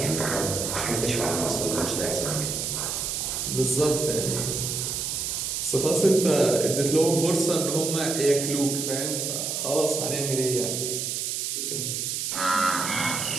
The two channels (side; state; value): right; noise; hiss, 2 dB below the sound